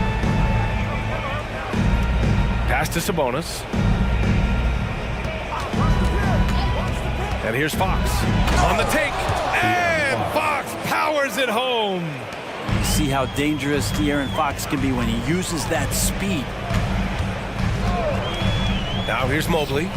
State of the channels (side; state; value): both; identical; correlation 1.00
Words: Pass to Sabonis. And here's Fox on the take. And Fox powers it home. You see how dangerous De'Aaron Fox can be when he uses that speed. Now here's Mobley.